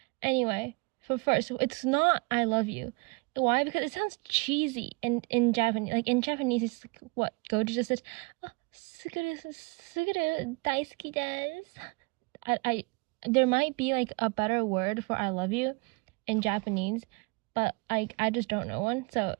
Anyway, for first, it's not "I love you." Why? Because it sounds cheesy in Japanese. In Japanese, it's what Gojo just says. Oh, suguru daisuki desu. There might be a better word for "I love you" in Japanese, but I just don't know one. So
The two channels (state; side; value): quieter; left; 29.5 dB